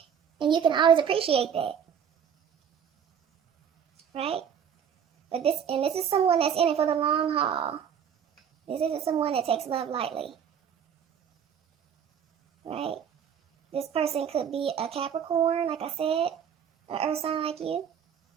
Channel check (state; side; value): quieter; left; 8.0 dB